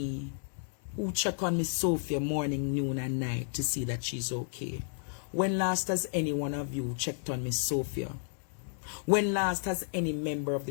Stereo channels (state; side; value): silent; right; 56 dB below the other